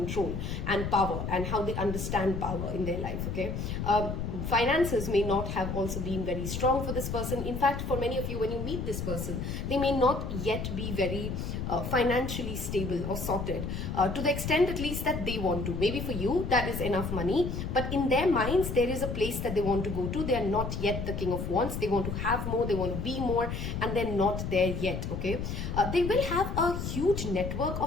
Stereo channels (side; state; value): left; noise; rumble, 4 dB below the sound